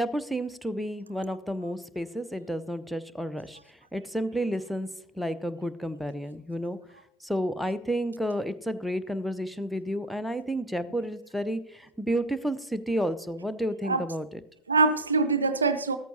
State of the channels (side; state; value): both; normal; correlation 0.34